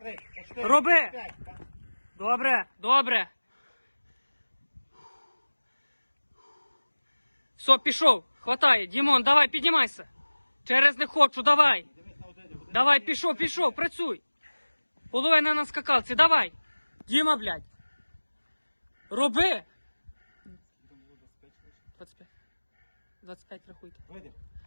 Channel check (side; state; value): both; inverted; correlation -1.00